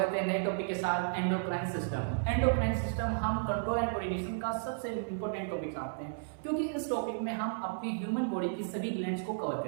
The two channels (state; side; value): silent; left; 56 dB below the other